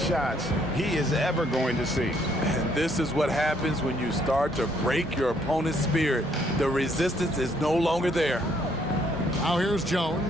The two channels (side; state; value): both; normal; correlation 0.68